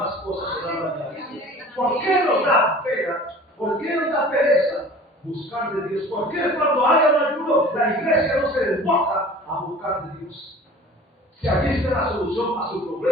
cosas serán añadidas. ¿Por qué nos da pena? ¿Por qué nos da pereza buscar de Dios? ¿Por qué cuando haya un ayuno la iglesia no se desboca a buscar de Dios? Si allí está la solución a su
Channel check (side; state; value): both; normal; correlation 0.44